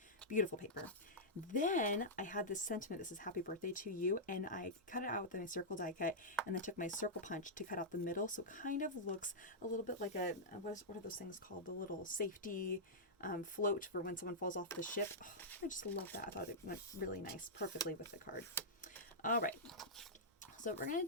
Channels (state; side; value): normal; both; correlation -0.10